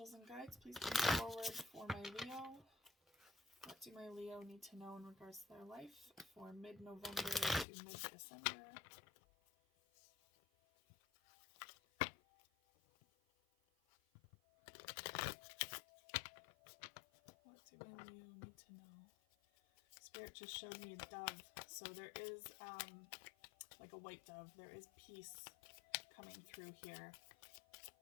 and guides, please come forward for my Leo. What do my Leo need to know in regards to their life for mid-November to mid-December? What do my Leo need to know? Spirit just showed me a dove. So there is, like a white dove, there is peace coming through here.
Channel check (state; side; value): drops out; right; at 7.7 s